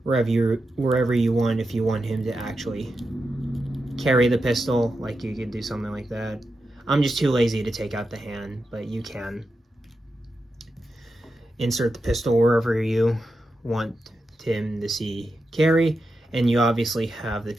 wherever you want, if you want him to actually carry the pistol. Like, you could do something like that. I'm just too lazy to take out the hand, but you can insert the pistol wherever you want him to see carry. And you obviously have the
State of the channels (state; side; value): normal; both; correlation 0.88